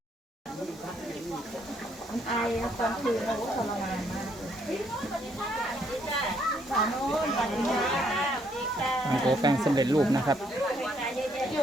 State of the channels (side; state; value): both; normal; correlation 0.70